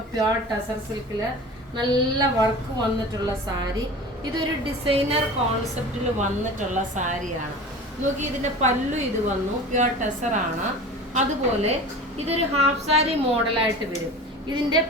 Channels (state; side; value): normal; both; correlation 0.36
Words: പ്യോർ ടസർ സിൽക്കിൽ നല്ല വർക്ക് വന്നിട്ടുള്ള സാരി. ഇതൊരു ഡിസൈനർ കോൺസെപ്റ്റിൽ വന്നിട്ടുള്ള സാരിയാണ്. നോക്കി ഇതിന്റെ പല്ലു ഇത് വന്നു, പ്യോർ ടസർ ആണ്. അതുപോലെ ഇതൊരു ഹാഫ് സാരി മോഡലായിട്ട് വരും. ഇതിന്റെ